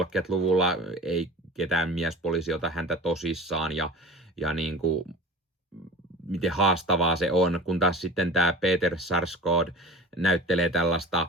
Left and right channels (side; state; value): both; normal; correlation 0.39